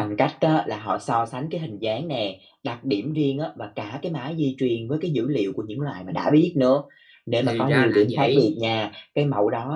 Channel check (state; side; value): identical; both; correlation 1.00